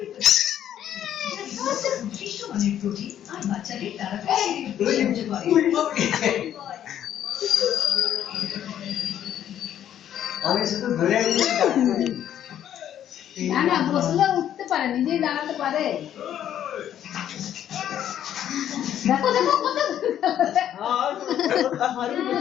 আমি শুধু ধরে না না বসলে উঠতে পারে নিজেই দাঁড়াতে পারে দেখো দেখো কত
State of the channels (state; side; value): quieter; right; 10.6 dB